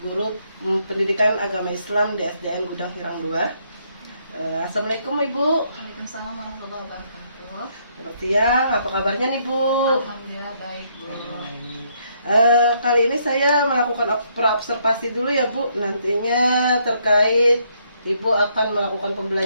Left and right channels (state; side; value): inverted; both; correlation -0.72